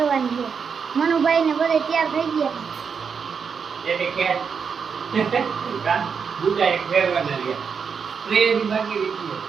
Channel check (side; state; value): left; quieter; 6.2 dB